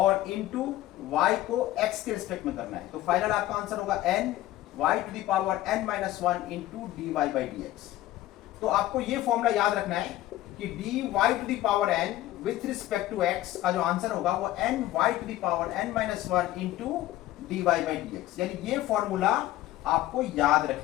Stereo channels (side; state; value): right; quieter; 15.0 dB